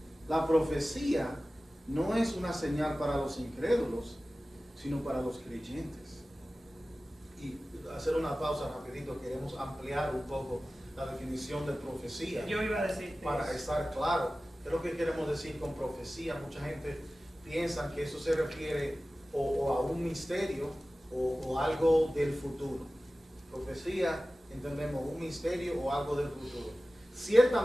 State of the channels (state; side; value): normal; both; correlation 0.96